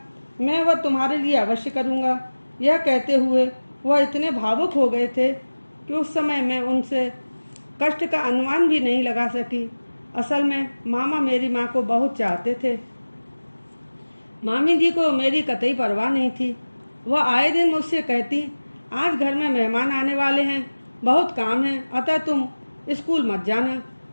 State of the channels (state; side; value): inverted; both; correlation -1.00